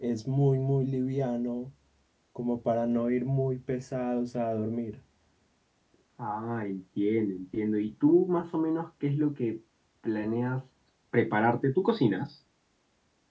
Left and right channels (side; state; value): both; identical; correlation 1.00